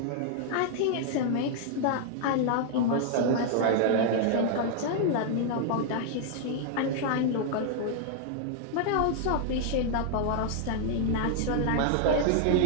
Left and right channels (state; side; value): different; both; correlation 0.00